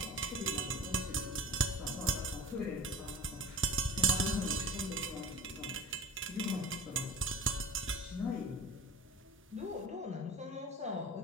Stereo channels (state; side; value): normal; both; correlation 0.37